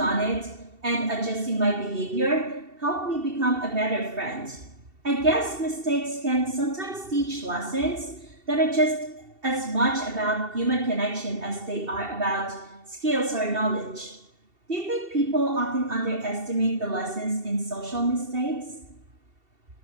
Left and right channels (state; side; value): late; left; 2.7 ms